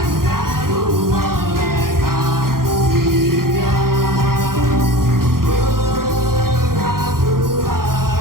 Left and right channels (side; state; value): left; late; 0.92 ms